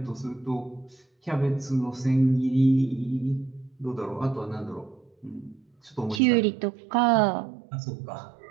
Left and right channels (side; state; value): left; drops out; at 6.2 s